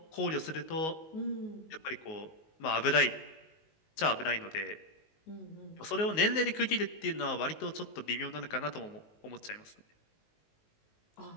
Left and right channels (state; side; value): late; right; 19 ms